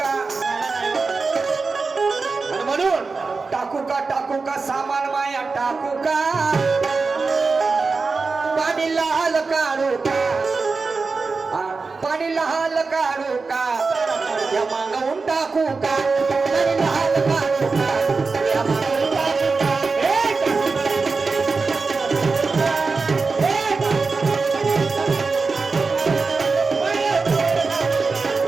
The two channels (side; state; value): left; quieter; 4.3 dB